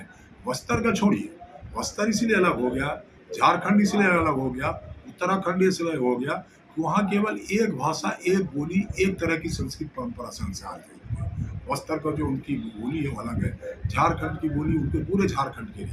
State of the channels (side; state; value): both; identical; correlation 1.00